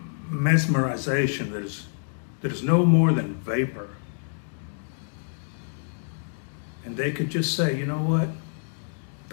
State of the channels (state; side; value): silent; right; digital silence